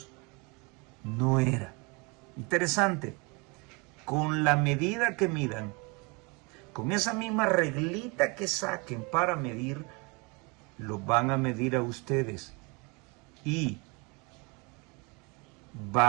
no era. Interesante, con la medida que midan, con esa misma reglita que saquen para medir, los van a medir a ustedes y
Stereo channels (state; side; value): quieter; left; 29.4 dB